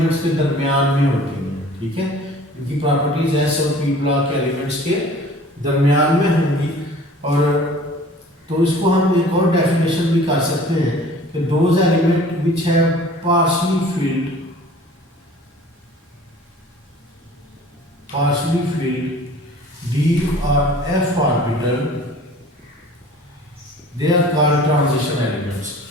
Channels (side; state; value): both; normal; correlation 0.47